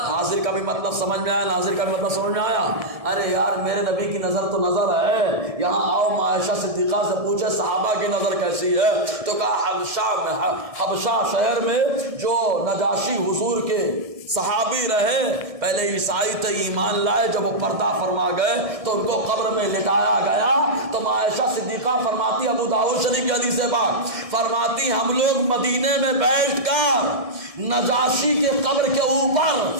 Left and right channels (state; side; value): late; left; 1.7 ms